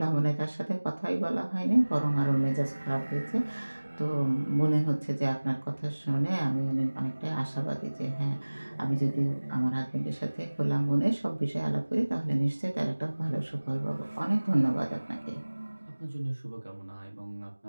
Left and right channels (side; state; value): both; inverted; correlation -1.00